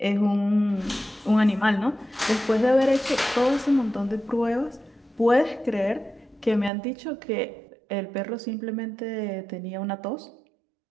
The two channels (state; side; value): drops out; left; at 6.7 s